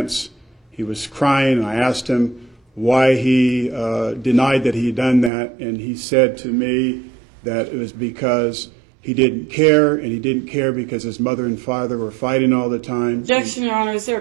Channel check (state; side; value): drops out; left; at 5.3 s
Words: He was crying, and I asked him why he denied that he had done that, and he said to me that it was because he didn't care, and he didn't care because his mother and father were fighting all the time. Objection, Your Honor. Is there a